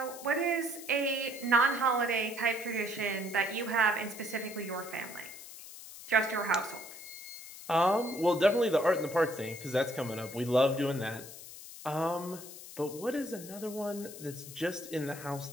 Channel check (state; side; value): noise; left; hiss, 14 dB below the sound